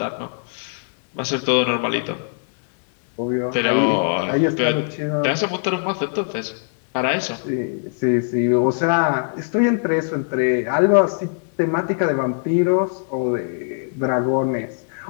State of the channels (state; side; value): silent; right; 65 dB below the other